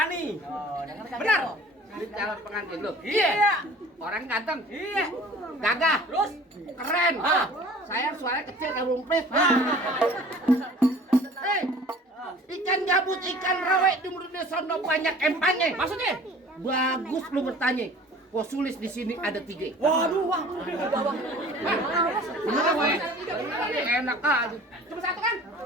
Benar. Di calon pengantin lu. Iya. Orang ganteng. Iya. Gagah. Terus keren. Saya suaranya kecil kayak rumpis. Hei, ikan gabut, ikan rawe di mulut sono banyak empangnya. Maksudnya? Bagus lu bertanya. Posulis di sini ada 3. Waduh, wah. Bener apa ya? Enak aja. Cuma 1 kan?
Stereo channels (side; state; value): both; normal; correlation 0.46